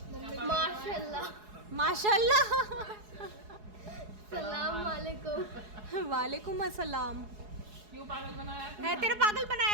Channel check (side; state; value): left; late; 4.7 ms